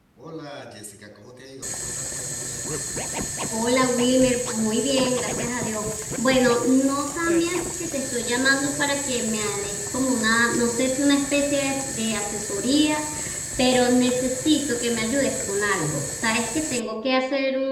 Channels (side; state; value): both; identical; correlation 1.00